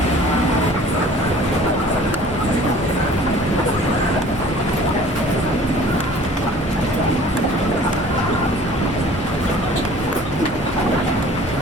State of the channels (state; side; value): normal; both; correlation 0.49